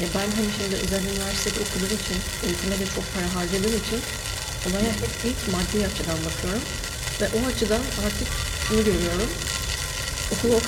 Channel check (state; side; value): identical; both; correlation 1.00